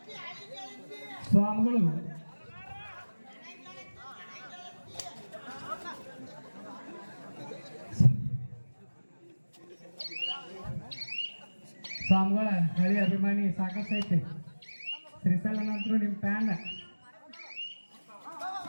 ಸ್ವಾಮಿಗಳು ಸ್ವಾಮಿಗಳ ಹಳಿ ಅಭಿಮಾನಿ ಸಾಕಷ್ಟು ಐತೆ. ಶ್ರೀಸಲ ನಂತರ ನಿಮ್ಮ ಫ್ಯಾನ್.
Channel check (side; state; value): both; inverted; correlation -1.00